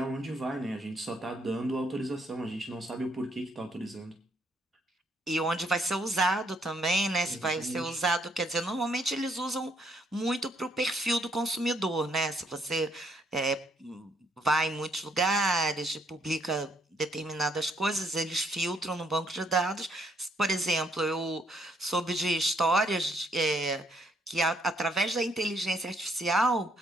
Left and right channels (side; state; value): both; normal; correlation 0.71